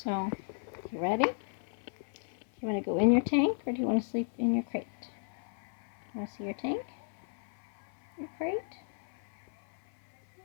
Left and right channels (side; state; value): right; silent; 55 dB below the other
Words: you ready? Do you want to go in your tank or do you want to sleep in your crate? You want to see your tank? Your crate?